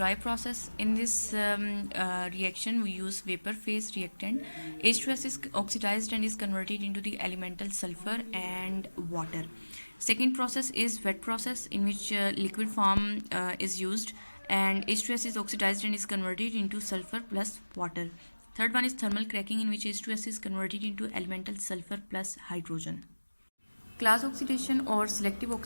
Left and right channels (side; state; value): both; inverted; correlation -1.00